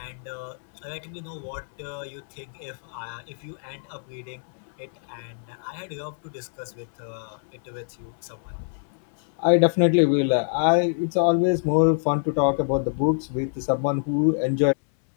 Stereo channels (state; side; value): silent; right; 61 dB below the other